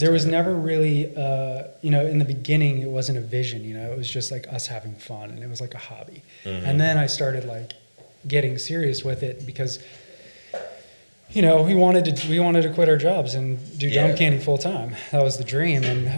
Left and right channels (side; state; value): both; inverted; correlation -1.00